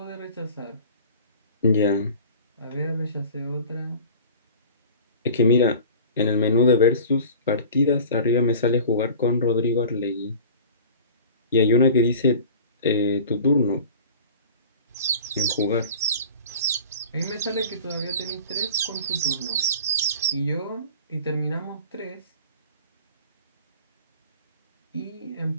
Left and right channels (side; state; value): both; inverted; correlation -0.41